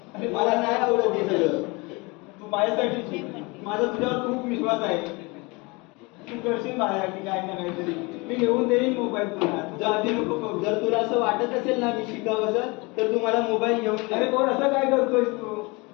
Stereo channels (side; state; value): right; quieter; 26.4 dB